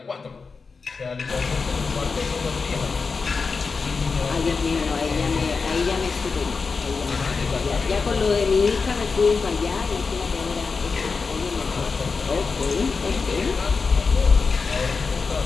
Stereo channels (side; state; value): right; quieter; 4.7 dB